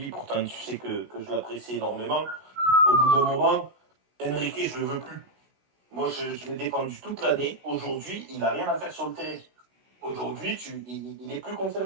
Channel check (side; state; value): left; late; 16 ms